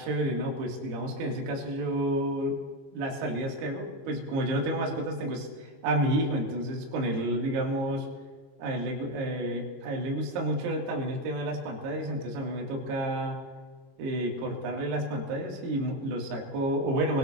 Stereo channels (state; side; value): late; left; 22 ms